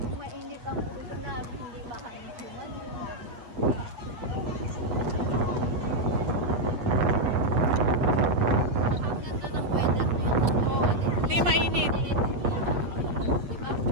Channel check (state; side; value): late; left; 8.4 ms